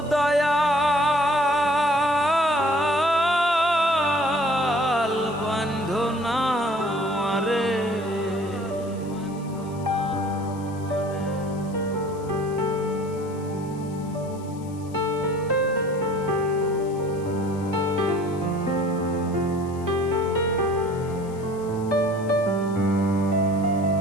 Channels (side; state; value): left; noise; hiss, 24 dB below the sound